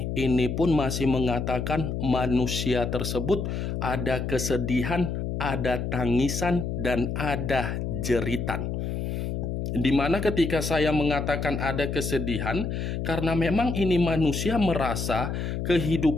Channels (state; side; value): noise; left; hum, 3 dB below the sound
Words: pun masih mengatakan manusia tersebut ada kesedihan, ada tangisan, dan ada jeritan. Dimana ketika saya mengatakan ada kesedihan, karena memang ini manusia merasa